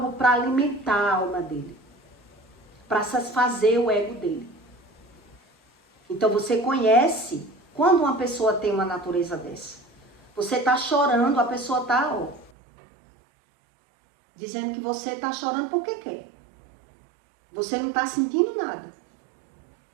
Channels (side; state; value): left; drops out; at 12.5 s